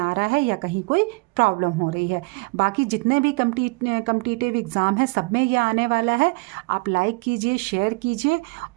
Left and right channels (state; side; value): quieter; left; 28.3 dB